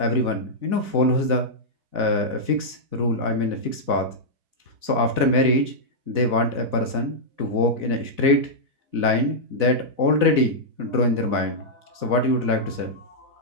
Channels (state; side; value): late; left; 4.0 ms